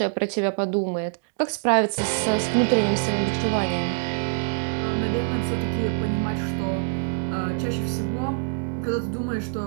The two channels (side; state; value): left; silent; digital silence